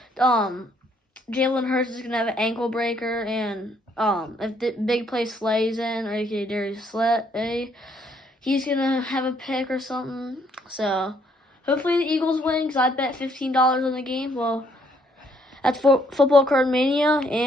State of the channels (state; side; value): normal; both; correlation 0.68